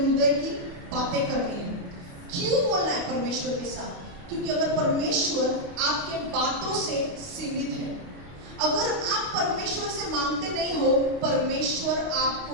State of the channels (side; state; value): left; late; 29 ms